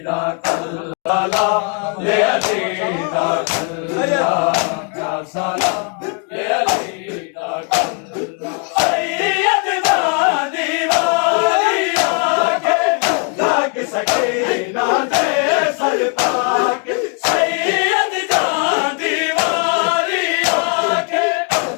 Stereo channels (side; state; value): right; quieter; 39.4 dB